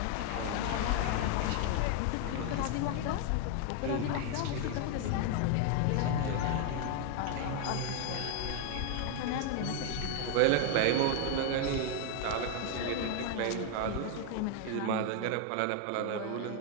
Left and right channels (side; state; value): both; different; correlation 0.00